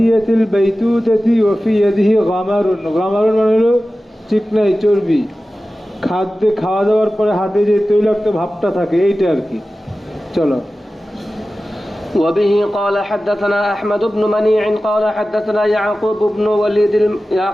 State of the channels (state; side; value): normal; both; correlation 0.95